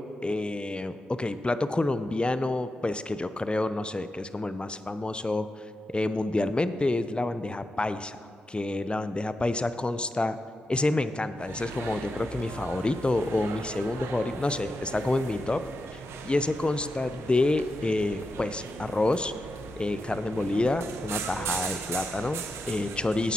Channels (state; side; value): normal; both; correlation 0.88